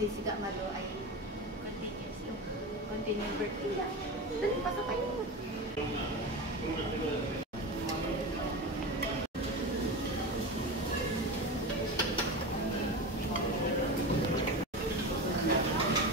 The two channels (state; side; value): normal; both; correlation 0.24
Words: si Gamalo ay continuous birthday lang. Dali, pasok tayo.